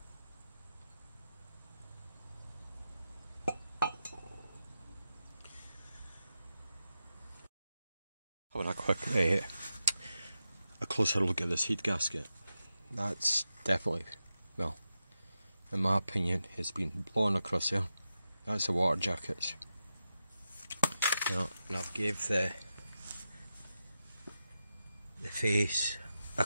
Having a quick, a closer look at this heat gasket. That's definitely, well, in my opinion, it's been blown across there. That's the water jackets. And I've gave the face a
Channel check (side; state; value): both; inverted; correlation -0.89